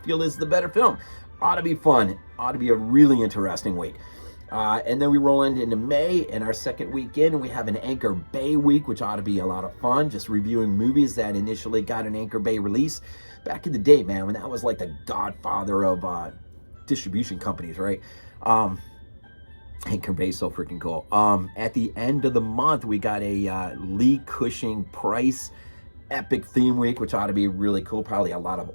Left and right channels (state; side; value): inverted; both; correlation -1.00